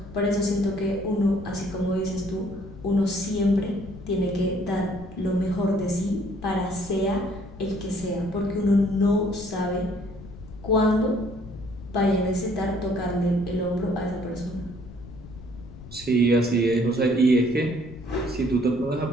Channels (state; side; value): noise; left; rumble, 16 dB below the sound